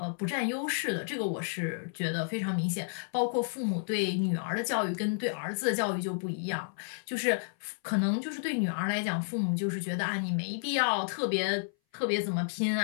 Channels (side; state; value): right; silent; 57 dB below the other